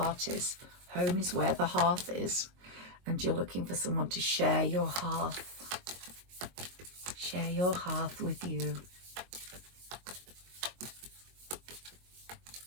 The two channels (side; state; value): left; late; 22 ms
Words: is. Home is where the hearth is. And you're looking for someone to share your hearth. Share your hearth with you.